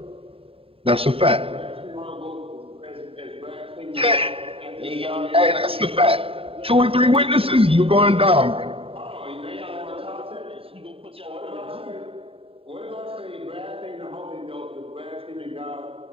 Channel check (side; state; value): left; late; 0.27 ms